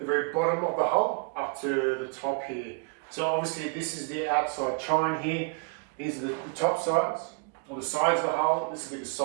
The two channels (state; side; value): quieter; left; 33.7 dB